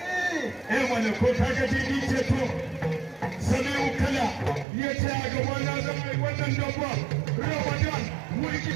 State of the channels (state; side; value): drops out; left; at 4.7 s